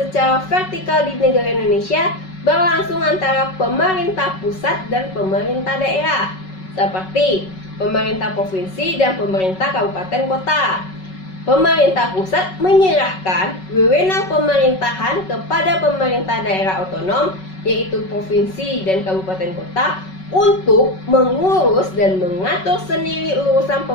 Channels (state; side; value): late; right; 5.3 ms